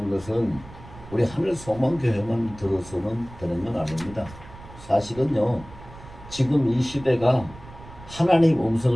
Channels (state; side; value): noise; right; rumble, 18 dB below the sound